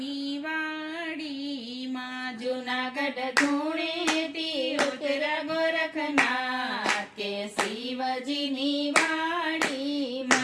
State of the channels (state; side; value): identical; both; correlation 1.00